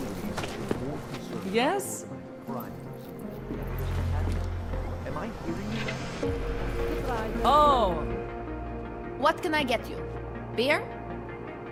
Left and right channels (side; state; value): both; identical; correlation 1.00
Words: me that you're more concerned Yes? about crime. Am I hearing you right? Oh. What can I get you? Beer?